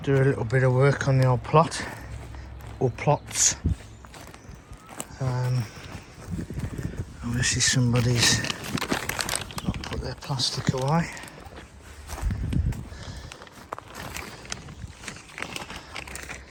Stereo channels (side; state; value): both; identical; correlation 1.00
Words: do a little bit of work on the old plot, or plots. Obviously somebody's not put their plastic away.